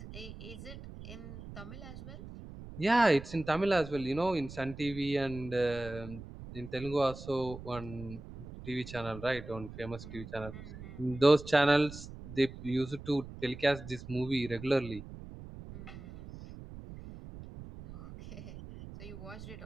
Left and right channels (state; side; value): noise; right; rumble, 13 dB below the sound